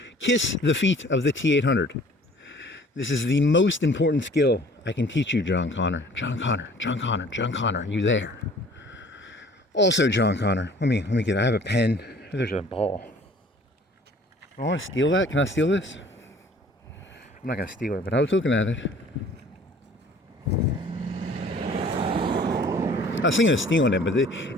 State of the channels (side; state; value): both; normal; correlation 0.52